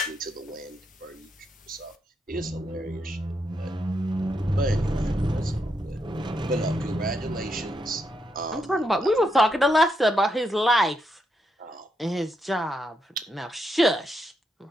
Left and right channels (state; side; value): normal; both; correlation 0.81